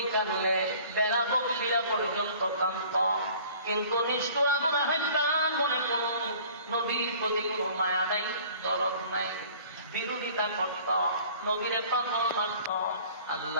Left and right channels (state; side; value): inverted; both; correlation -0.49